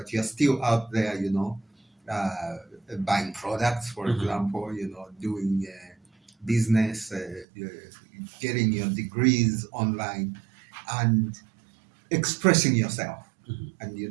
you're still out there, you know, buying products, for example, you know, doing business, getting your degrees online, and expressing yourself. And you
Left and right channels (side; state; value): left; drops out; at 7.5 s